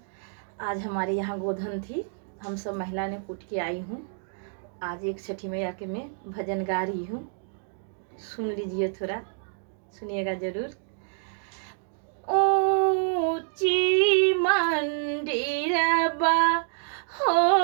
आज हमारे यहाँ गोधन थी, हम सब महिला ने कूट के आई हूँ। आज एक छठी मैया के मैं भजन गा रही हूँ, सुन लीजिए, थोड़ा सुनिएगा जरूर। ऊंची मंदिरबा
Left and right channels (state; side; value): silent; left; digital silence